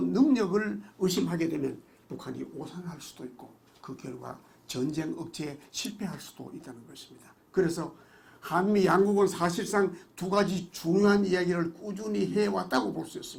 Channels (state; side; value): identical; both; correlation 1.00